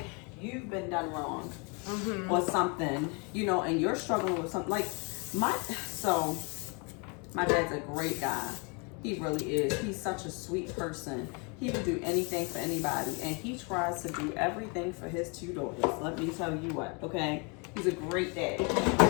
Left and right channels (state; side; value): quieter; right; 32.7 dB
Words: you've been done wrong or something, you know, and you're struggling with something, like my dad's a great guy. He really is. He's such a sweet person. He would do anything for anybody, and he tries to do everything for his two daughters. Let me tell you what, okay? He's a great dad.